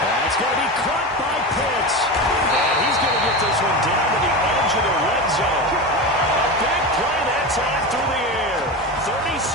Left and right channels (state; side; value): normal; both; correlation 0.23